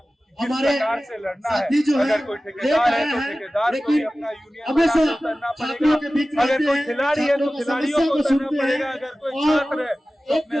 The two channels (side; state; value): both; normal; correlation 0.96